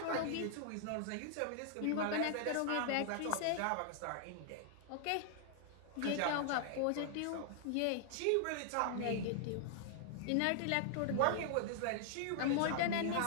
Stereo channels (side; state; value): both; different; correlation 0.00